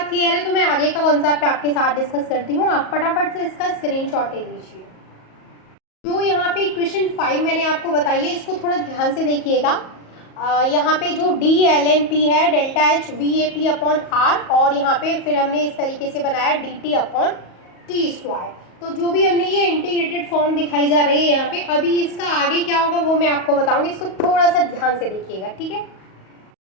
क्लियर है, तो मैं आगे का कॉन्सेप्ट आपके साथ डिस्कस करती हूँ, आप फटाफट से इसका स्क्रीनशॉट ले लीजिए। जो यहाँ पे इक्वेशन 5 मैंने आपको बताई है, इसको थोड़ा ध्यान से देखिएगा। यहाँ पे जो DlnP है, delta H VAP upon R, और यहाँ पे फिर हमने इस तरीके से बनाया DT अपॉन T²। तो जो भी हमने ये इंटीग्रेटेड फॉर्म दिखाई जा रही है यहाँ पे, अभी इसका आगे क्या होगा वो मैं आपको बताऊंगी, इसको थोड़ा सा ध्यान से देखिएगा, ठीक है।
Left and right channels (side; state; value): right; late; 38 ms